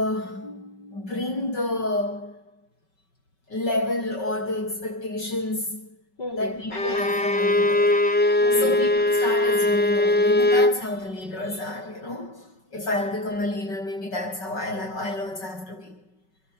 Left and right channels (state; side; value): late; right; 5.3 ms